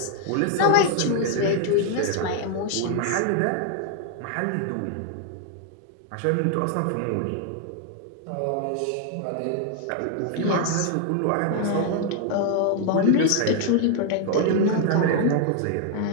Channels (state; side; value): different; both; correlation 0.00